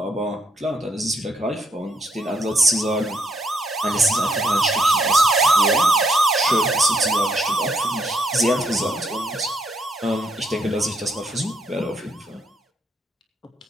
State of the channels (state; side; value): normal; both; correlation 0.72